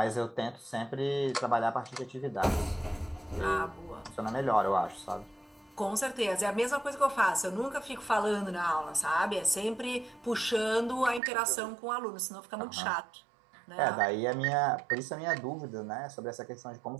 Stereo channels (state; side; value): drops out; left; at 11.2 s